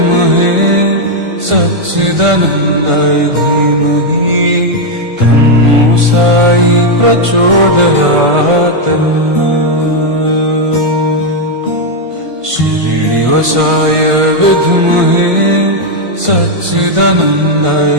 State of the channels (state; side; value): late; left; 1.5 ms